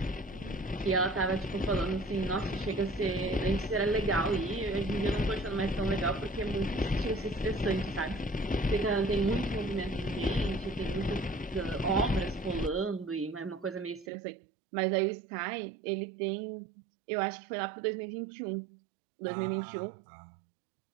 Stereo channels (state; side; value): drops out; left; at 14.1 s